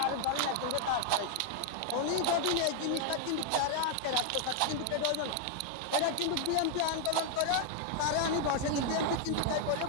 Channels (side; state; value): both; different; correlation 0.00